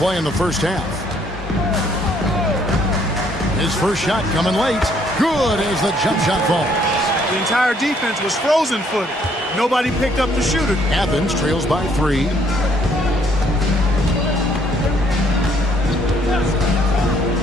in the first half. His first shot coming late. Good as the jump shot falls. The entire defense was frozen-footed. Nobody picked up the shooter. Athens trails by 3.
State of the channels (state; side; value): normal; both; correlation 0.66